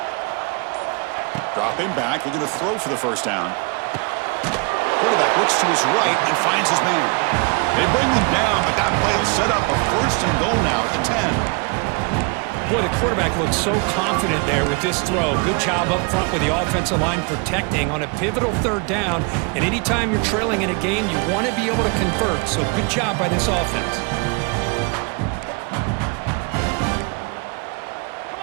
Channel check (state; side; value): quieter; left; 32.4 dB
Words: Dropping back, looking to throw for the first down. Quarterback looks to his right and finds his man. They bring him down, but that play will set up a 1st and goal now at the 10. Boy, the quarterback looks so confident there with this throw. Good job up front with the offensive line protecting on a pivotal 3rd down. And anytime you're trailing in a game, you want to be able to convert. So good job by this offense. Come